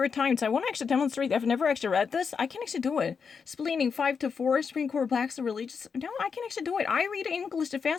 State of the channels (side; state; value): right; quieter; 5.9 dB